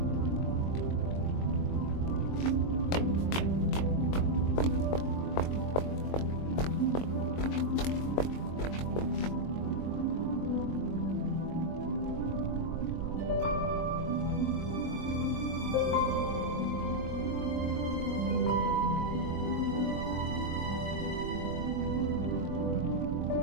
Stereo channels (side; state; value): right; late; 22 ms